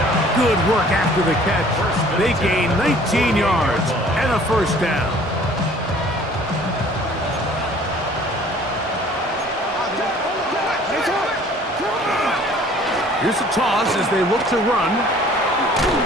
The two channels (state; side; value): normal; both; correlation 0.53